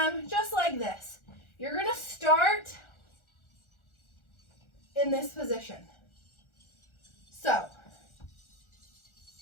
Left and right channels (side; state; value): right; late; 1.4 ms